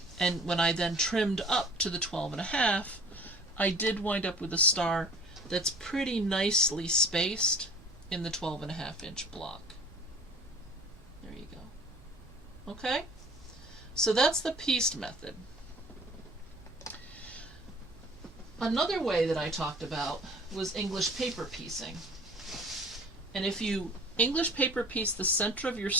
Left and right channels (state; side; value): normal; both; correlation 0.46